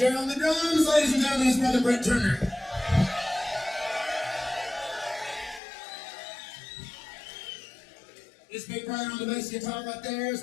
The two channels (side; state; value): right; drops out; at 5.6 s